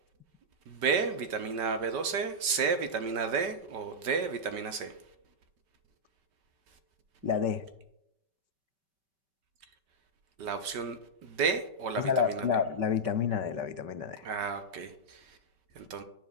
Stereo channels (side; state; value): left; late; 5.2 ms